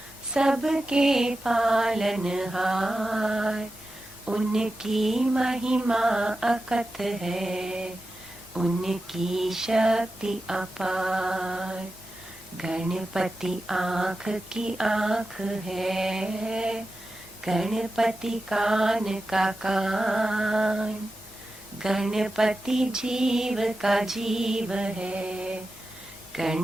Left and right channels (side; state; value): both; normal; correlation 0.92